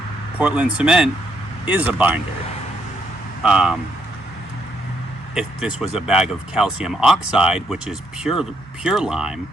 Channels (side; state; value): both; normal; correlation 0.74